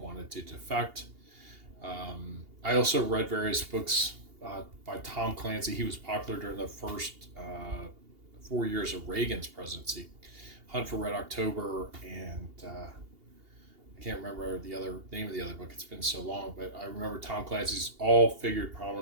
to defect. I also read various books by Tom Clancy. He was popular during the first 4 years of Reagan's presidency. Hunt for Red October, and I can't remember the other name of the other book. It's been so long, but I remember Tom Clancy's all figured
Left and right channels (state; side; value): late; left; 2.8 ms